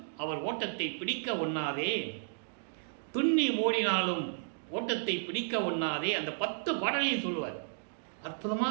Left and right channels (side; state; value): left; silent; digital silence